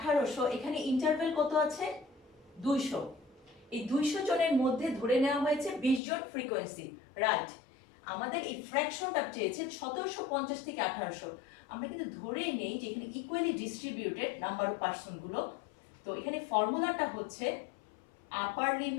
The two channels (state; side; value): drops out; right; at 6.0 s